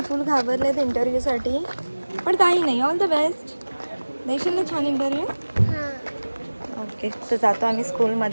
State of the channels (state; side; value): inverted; both; correlation -1.00